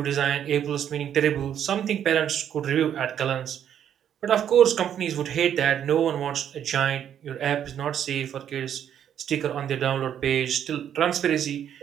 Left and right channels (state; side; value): quieter; left; 9.5 dB